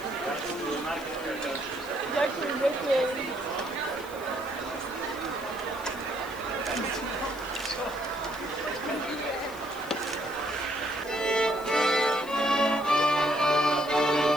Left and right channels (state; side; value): noise; left; hiss, 19 dB below the sound